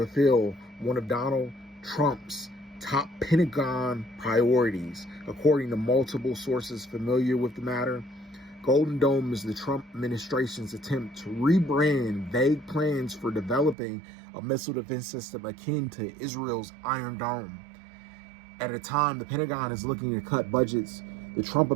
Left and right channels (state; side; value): drops out; left; at 13.8 s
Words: one of Donald Trump's top Pentagon priorities. According to multiple sources familiar with the matter, Golden Dome is the Trump administration's attempt to rebrand vague plans for developing a missile defense system akin to Israel's Iron Dome. At a time the Pentagon is looking to cut budgets, the Trump